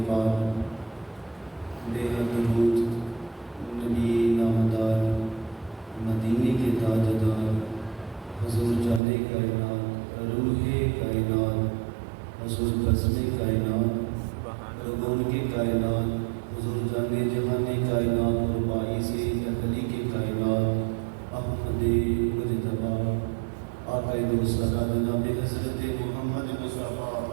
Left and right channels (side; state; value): left; drops out; at 9.0 s